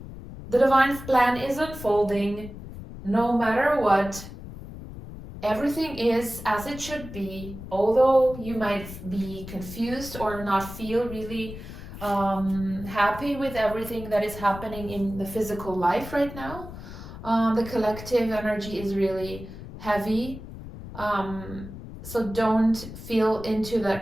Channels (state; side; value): noise; left; rumble, 12 dB below the sound